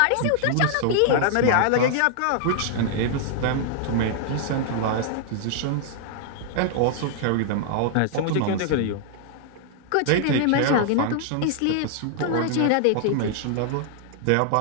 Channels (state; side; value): different; both; correlation -0.01